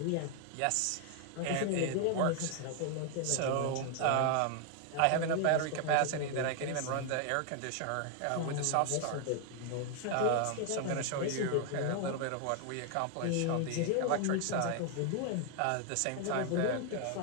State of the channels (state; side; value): different; both; correlation 0.00